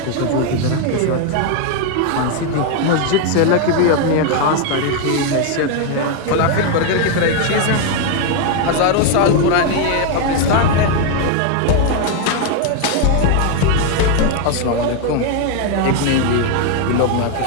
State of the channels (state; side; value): different; both; correlation 0.01